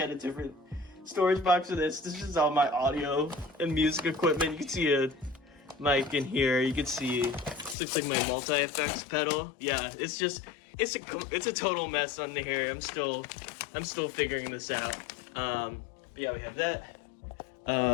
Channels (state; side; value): drops out; right; at 7.8 s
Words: a different storage box for this. This is all my audio and music equipment. You can see a mic in here. You can see this looks like my multi-effects pedal. Yeah, it's a total mess under here. I'm still figuring this out. But yeah, we have that.